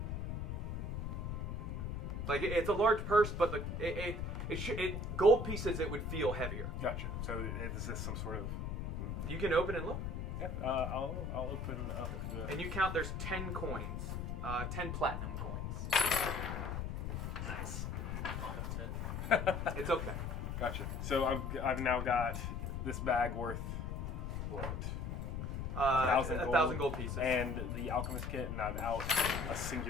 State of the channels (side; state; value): left; noise; rumble, 3 dB below the sound